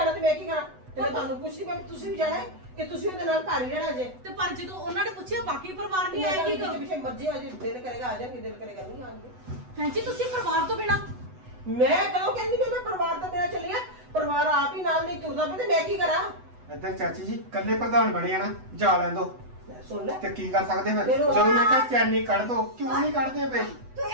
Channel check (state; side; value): late; left; 8.0 ms